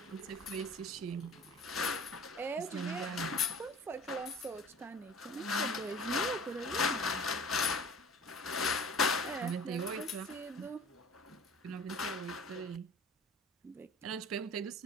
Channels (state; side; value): normal; both; correlation 0.44